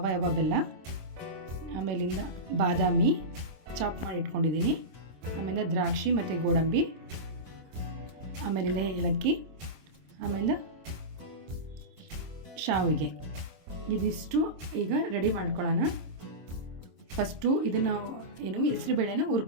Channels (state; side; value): late; left; 26 ms